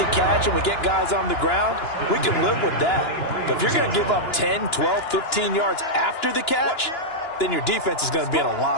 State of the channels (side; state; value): right; late; 2.9 ms